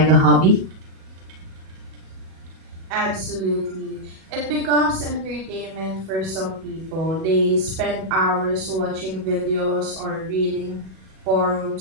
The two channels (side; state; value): left; late; 37 ms